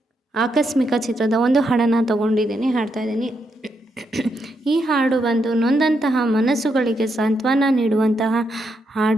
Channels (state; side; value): normal; both; correlation 0.80